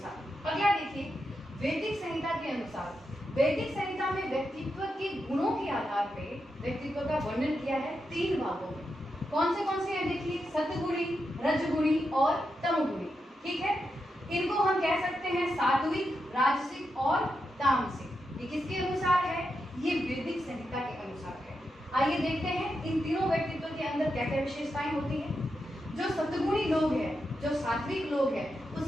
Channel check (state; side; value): normal; both; correlation 0.86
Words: अगला देखिए वैदिक संहिता के अनुसार। वैदिक संहिता में व्यक्तित्व के गुणों के आधार पे व्यक्तित्व का वर्णन किया है 3 भागों में। कौन से हैं? देखिए, सतगुणी, रजगुणी और तमगुणी। ठीक है, इनको हम कह सकते हैं सात्विक, राजसिक और तामसिक। ये किसके अनुसार है? ये वैदिक संहिता के अनुसार है। आइए देखते हैं इन तीनों व्यक्तित्व के अंदर क्या क्या विशेषताएं होती हैं। जो सतगुणी लोग हैं, जो सात्विक लोग हैं,